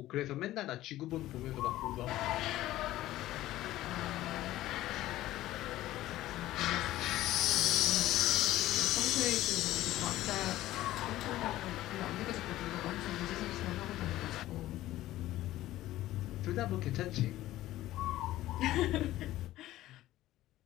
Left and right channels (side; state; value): right; quieter; 15.3 dB